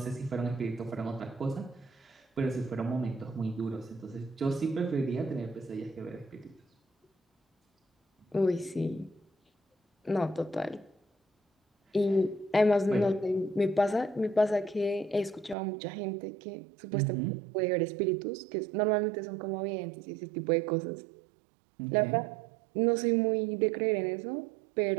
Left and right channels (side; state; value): left; drops out; at 15.6 s